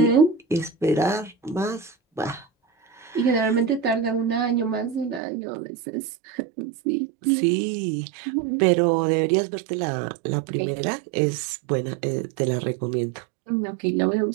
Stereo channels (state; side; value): drops out; left; at 5.2 s